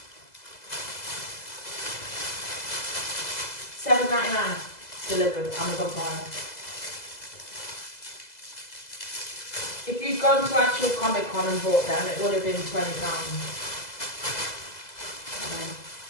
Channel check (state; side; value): late; right; 2.0 ms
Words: $7.99 delivered, Amazon Prime. If you'd gone to actual Comic-Con and bought them, it would have been £20.